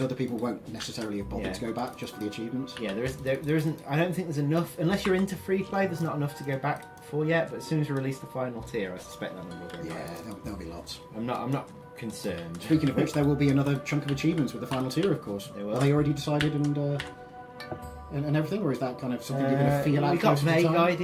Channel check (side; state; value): both; identical; correlation 1.00